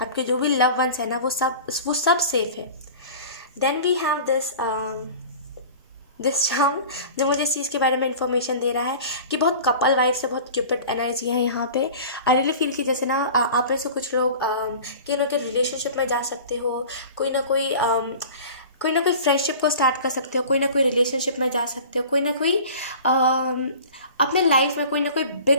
आपके जो भी लव वंस है ना वो सब सेफ है। Then we have this charm जो मुझे इस चीज़ के बारे में इंफॉर्मेशन दे रहा है कि बहुत कपल वाइफ से बहुत क्यूपिड एनर्जी है यहाँ पे। आई रियली फील कि जैसे ना आप में से कुछ लोग कि ना कि रिलेशनशिप में जा सकते हो, कोई ना कोई फ्रेंडशिप को स्टार्ट कर सकते हो, कोई ना कोई रिलेशनशिप में जा सकते हो, कोई ना कोई अपने लाइफ में कोई ना कोई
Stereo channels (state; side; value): inverted; both; correlation -0.39